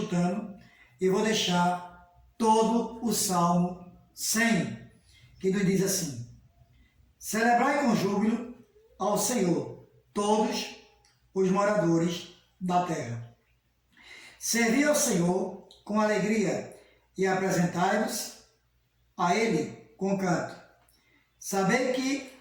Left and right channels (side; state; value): both; identical; correlation 1.00